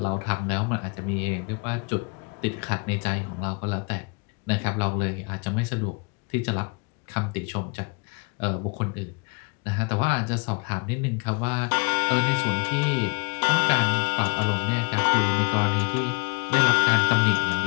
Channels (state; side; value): quieter; right; 33.0 dB